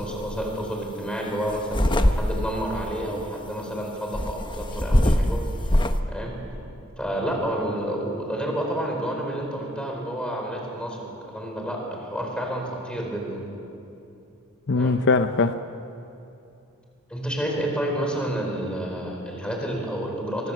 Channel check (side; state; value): both; normal; correlation 0.63